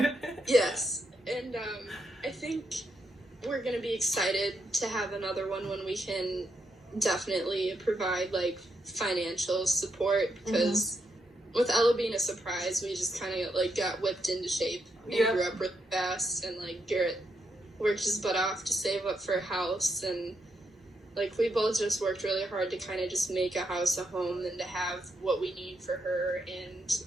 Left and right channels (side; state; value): both; normal; correlation 0.80